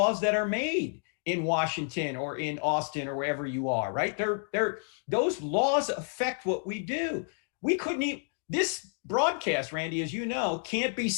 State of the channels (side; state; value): right; silent; 58 dB below the other